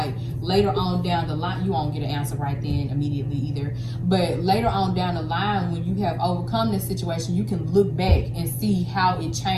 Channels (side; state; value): both; identical; correlation 1.00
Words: later on down the line, you won't get an answer right then immediately either, but later on down the line, when you have overcome this situation, you can look back and see how it